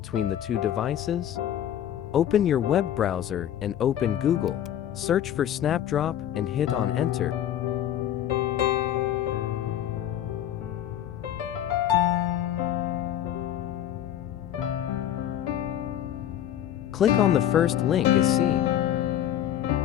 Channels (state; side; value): quieter; right; 11.0 dB